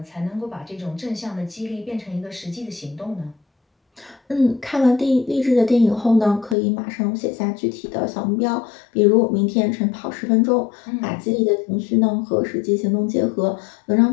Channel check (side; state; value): right; drops out; at 6.6 s